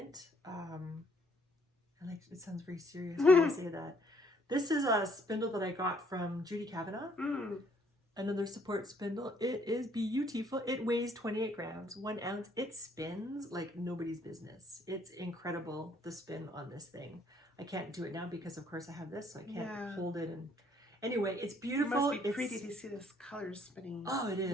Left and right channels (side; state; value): both; normal; correlation 0.65